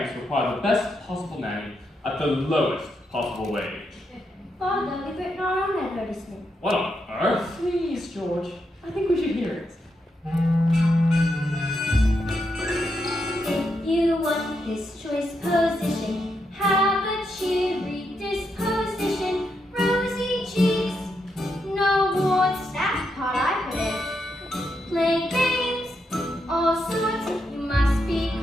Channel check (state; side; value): normal; both; correlation 0.82